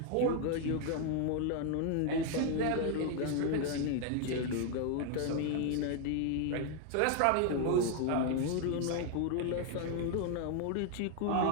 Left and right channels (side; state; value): both; different; correlation 0.00